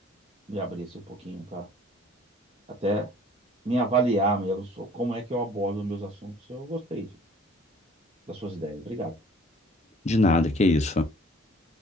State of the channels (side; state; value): both; normal; correlation 0.53